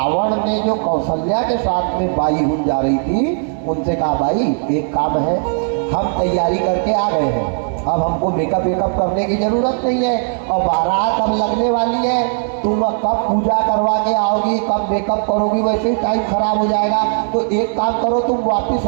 ने जो कौशल्या के साथ में बाई हुन जा रही थी उनसे कहा, भाई एक काम है, हम तैयारी करके आ गए हैं, अब हमको मेकअप वेकअप करने की जरूरत नहीं है और बारात अब लगने वाली है, तुम अब कब पूजा करवा के आओगी, कब मेकअप करोगी, वैसे ही टाइम खराब हो जाएगा। तो एक काम करो, तुम वापस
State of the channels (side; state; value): left; silent; digital silence